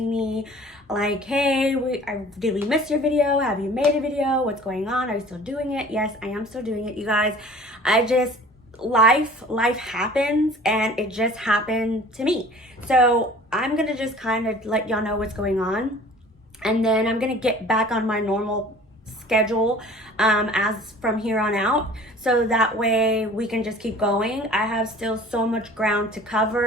me like, hey, did we miss your video? Have you made a video? What's going on? Are you still doing it? Yes, I am still doing it, you guys. Life happens, and it just happened to me. So I'm gonna just kind of let y'all know what's going on, and then I'm gonna get back on my normal schedule as from here on out, so that way we can just keep going. I have still so much ground to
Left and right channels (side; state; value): both; normal; correlation 0.47